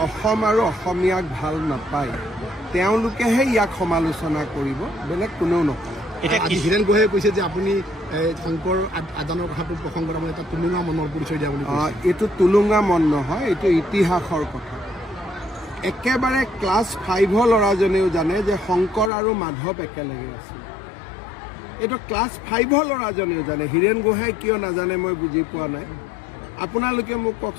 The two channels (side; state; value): right; drops out; at 19.1 s